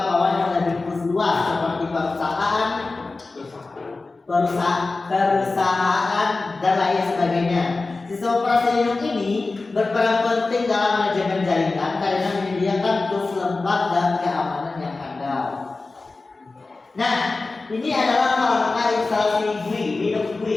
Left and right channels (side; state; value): right; quieter; 3.6 dB